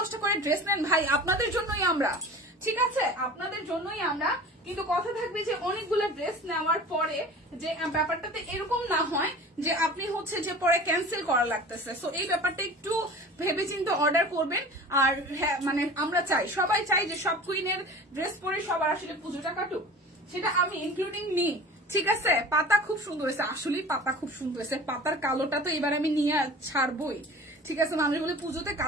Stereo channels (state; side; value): normal; both; correlation 0.40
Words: করে ড্রেস নেন ভাই, আপনাদের জন্যই আমরা, ঠিক আছে, আপনাদের জন্যই আমরা। কিন্তু কথা থাকবে যে অনেকগুলো ড্রেস নেওয়ার পরে যে ব্যাপারটাতে এরকম না হয় যে আপনি হচ্ছে যে পরে ক্যান্সেল করা লাগতেছে। সো এই ব্যাপারটা একটু ভেবেচিন্তে অর্ডার করবেন। আর হ্যাঁ, মানে আমরা চাই, সবাই চাই যে সব কুইনের ড্রেস পরে সবার আসলে পুজোটা কাটুক, সেটা আমি ইনক্লুডিং নি। ঠিক আছে, পাতা খুব সুন্দর হয়েছে, আসলেই পাতা খুব সুন্দর হয়েছে। পাতার কালোটা তো এবার আমি নিয়ে ছাড়বই। ঠিক আছে, মানুষ বলে পুজোতে